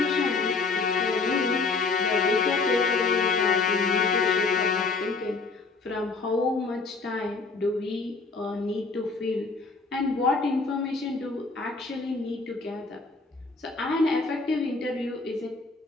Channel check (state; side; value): quieter; right; 4.0 dB